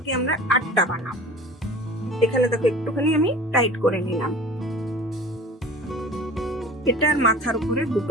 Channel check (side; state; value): both; normal; correlation 0.41